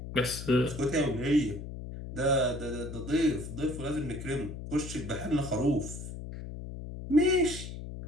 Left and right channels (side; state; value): left; noise; hum, 9 dB below the sound